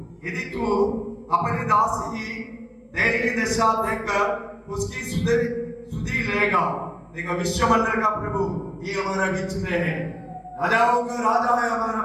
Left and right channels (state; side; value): identical; both; correlation 1.00